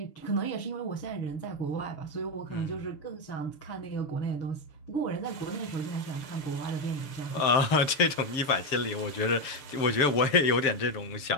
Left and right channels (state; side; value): late; right; 6.9 ms